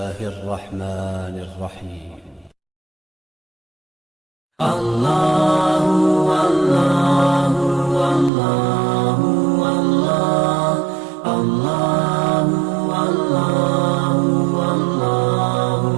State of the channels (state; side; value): drops out; left; at 8.3 s